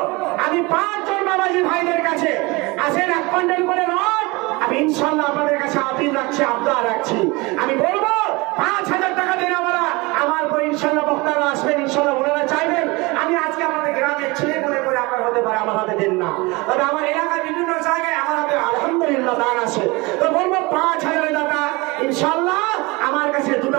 আমি 5 জন বাবাজি ভাইদের কাছে আসেন 1 কুইন্টাল করে রড, আমি ইনশাআল্লাহ আপনাদের কাছে আপিল রাখছি, আবদার রাখছি। আমি বলবো 5,000 টাকা দেওয়ালা আমার পর ইনশাআল্লাহ বক্তারা আসবেন, ইনশাআল্লাহ ওনারা চাইবেন আমি আজকে আপনাদের গ্রামের ছেলে মনে করে আপনার হতে পারে, আমার হাতে দেন না। তবে আমার এলাকার বিভিন্ন জায়গায় আমার হাতে আলহামদুলিল্লাহ দান আছে, তো বলবো 5,000 টাকা ইনশাআল্লাহ আমার কাছে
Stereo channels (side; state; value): left; quieter; 24.6 dB